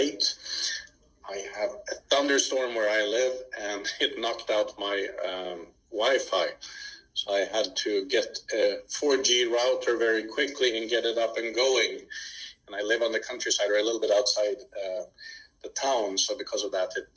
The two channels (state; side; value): identical; both; correlation 1.00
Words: I have a thunderstorm where I live, and it knocked out my Wi-Fi. So I had to get a 4G router very quickly and get it up and going. And I live on the countryside, or a little bit outside the town. So because of that, it